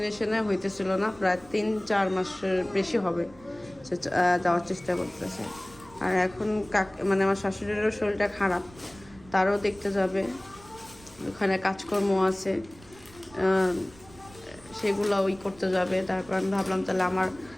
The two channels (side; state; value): right; noise; rumble, 23 dB below the sound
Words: হইতেছিল না। প্রায় 3-4 মাসের বেশি হবে সে যাওয়ার চেষ্টা করতেছে। আর এখন মানে আমার শাশুড়িরও শরীরটা খারাপ, তারও দেখতে যাবে, ওখানে কাজকর্ম আছে, সেগুলো ওই করতে যাবে। তারপর আমি ভাবলাম তাহলে আমার